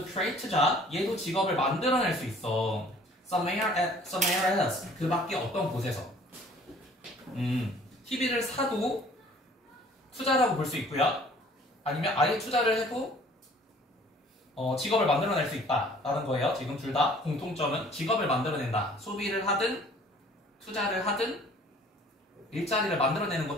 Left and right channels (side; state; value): both; normal; correlation 0.53